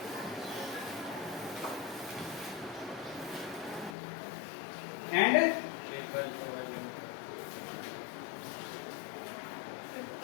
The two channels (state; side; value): drops out; right; at 4.0 s